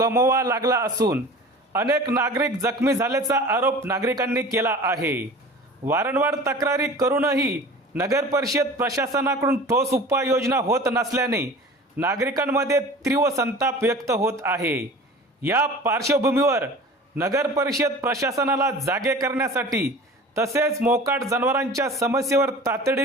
लागला असून अनेक नागरिक जखमी झाल्याचा आरोप नागरिकांनी केला आहे. वारंवार तक्रारी करूनही नगर परिषद प्रशासनाकडून ठोस उपाययोजना होत नसल्याने नागरिकांमध्ये तीव्र संताप व्यक्त होत आहे. या पार्श्वभूमीवर नगर परिषद प्रशासनाला जागे करण्यासाठी तसेच मोकाट जनावरांच्या समस्येवर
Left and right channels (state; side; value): normal; both; correlation 0.40